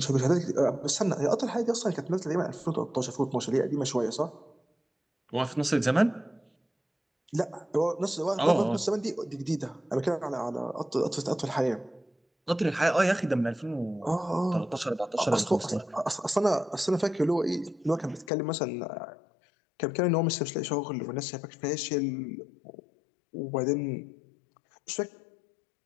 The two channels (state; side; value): drops out; right; at 18.3 s